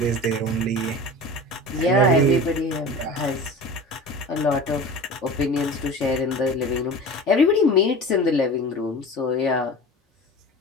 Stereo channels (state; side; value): normal; both; correlation 0.35